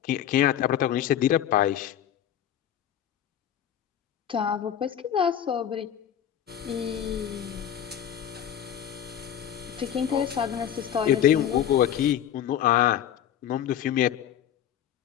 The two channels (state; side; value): quieter; right; 10.2 dB